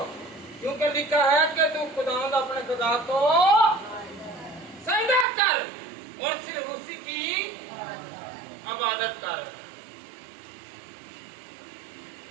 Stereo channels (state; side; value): drops out; left; at 5.2 s